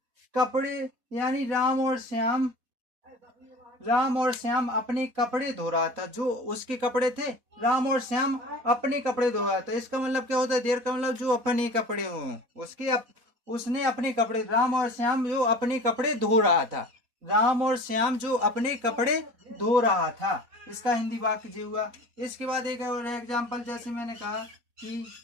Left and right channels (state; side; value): late; left; 4.1 ms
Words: कपड़े, यानी राम और श्याम अपने कपड़े धो रहा था, जो उसके कपड़े थे, राम और श्याम अपने कपड़े धो रहा था। इसका मतलब क्या होता है, देर का मतलब जो अपने कपड़े हों, उसने अपने कपड़े, राम और श्याम जो अपने कपड़े धो रहा था, राम और श्याम जो अपने कपड़े धो रहा था, इसका हिंदी वाक्य जी हुआ। इसके बाद एक और एग्जाम्पल, जैसे मैंने कहा कि